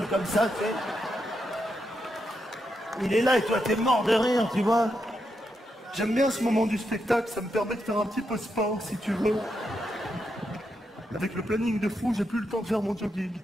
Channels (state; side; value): normal; both; correlation 0.83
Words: comme ça, tu sais. Il est là et toi, t'es mort de rire, tu vois. J'aime bien ce moment du spectacle, ça me permet de faire un petit peu sport, si tu veux. Avec le planning de fou, j'ai plus le temps de faire mon jogging.